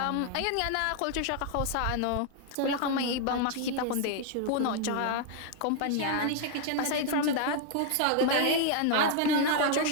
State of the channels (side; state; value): both; different; correlation 0.00